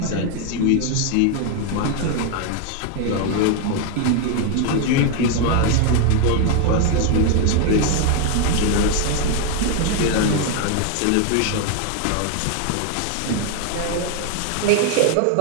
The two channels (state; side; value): different; both; correlation 0.01